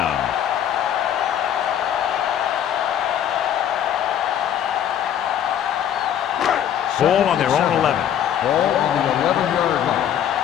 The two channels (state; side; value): quieter; right; 10.0 dB